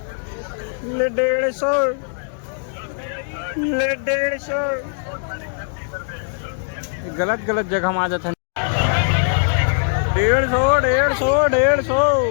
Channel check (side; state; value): right; silent; digital silence